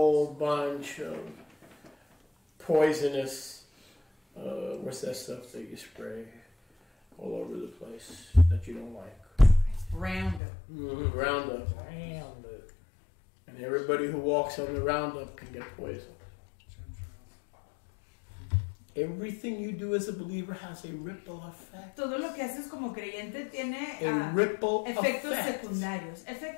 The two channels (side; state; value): right; drops out; at 10.4 s